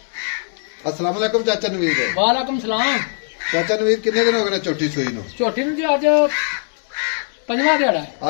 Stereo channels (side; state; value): right; silent; 66 dB below the other